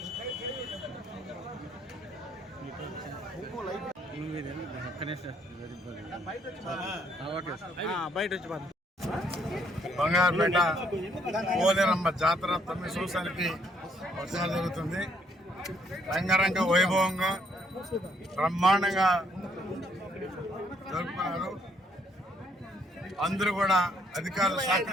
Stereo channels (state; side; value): normal; both; correlation 0.69